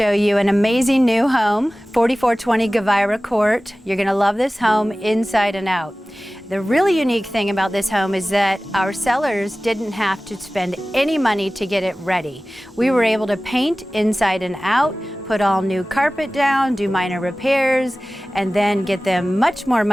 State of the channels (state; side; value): normal; both; correlation 0.97